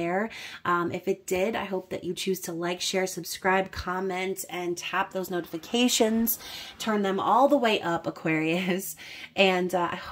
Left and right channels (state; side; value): identical; both; correlation 1.00